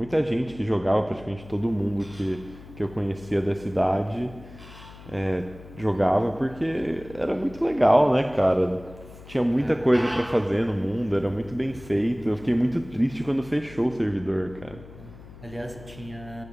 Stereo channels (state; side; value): noise; left; hum, 18 dB below the sound